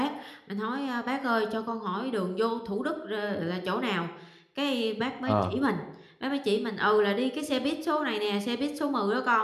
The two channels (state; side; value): identical; both; correlation 1.00